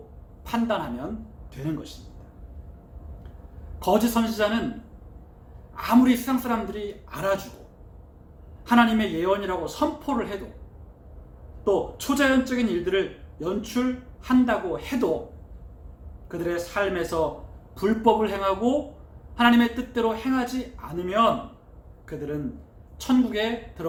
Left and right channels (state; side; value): identical; both; correlation 1.00